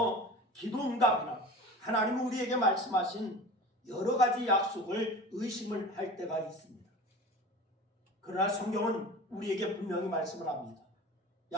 기도응답이나 하나님은 우리에게 말씀하신 여러 가지 약속을 의심을 할 때가 있습니다. 그러나 성경은 우리에게 분명히 말씀을 합니다.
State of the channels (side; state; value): both; normal; correlation 0.36